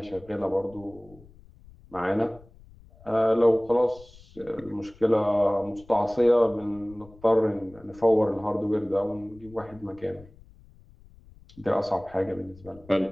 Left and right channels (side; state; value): left; noise; rumble, 23 dB below the sound